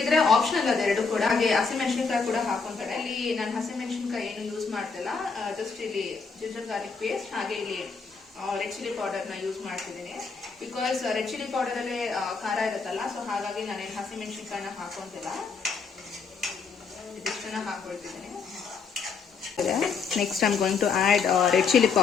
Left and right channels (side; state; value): right; quieter; 5.1 dB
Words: ಆಪ್ಷನಲ್ ಅದೆರಡು ಕೂಡ. ಹಾಗೆ ಹಸಿಮೆಣಸಿನಕಾಯಿ ಕೂಡ ಹಾಕೊಂತಾರೆ. ಇಲ್ಲಿ ನಾನು ಹಸಿಮೆಣಸಿನಕಾಯಿ ಏನು ಯೂಸ್ ಮಾಡ್ತಿಲ್ಲ. ಜಸ್ಟ್ ಇಲ್ಲಿ ಜಿಂಜರ್ ಗಾರ್ಲಿಕ್ ಪೇಸ್ಟ್ ಹಾಗೆ ಇಲ್ಲಿ ರೆಡ್ ಚಿಲ್ಲಿ ಪೌಡರ್ ನ ಯೂಸ್ ಮಾಡ್ತಿದ್ದೀನಿ. ಬಿಕಾಸ್ ರೆಡ್ ಚಿಲ್ಲಿ ಪೌಡರ್ ಅಲ್ಲೇ ಖಾರ ಇರುತ್ತಲ್ಲ. ಸೊ ಹಾಗಾಗಿ ನಾನೇನು ಹಸಿಮೆಣಸಿನಕಾಯಿನ ಹಾಕೊಂತಿಲ್ಲ, ಇದಿಷ್ಟನ್ನ ಹಾಕೊಳ್ತಿದ್ದೀನಿ. Next I am going to add red chilli